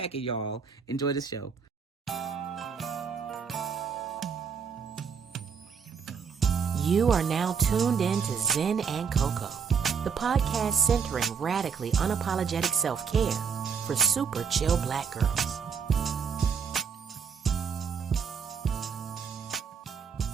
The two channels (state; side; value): quieter; left; 6.4 dB